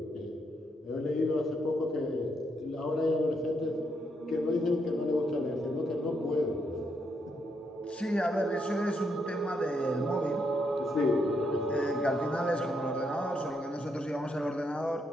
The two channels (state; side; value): normal; both; correlation 0.77